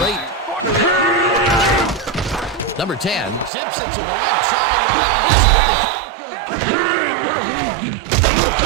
8. Number 10 zips it to the left sideline.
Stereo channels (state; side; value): drops out; left; at 3.5 s